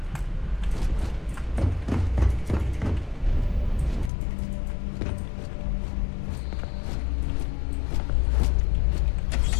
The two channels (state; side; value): drops out; right; at 4.1 s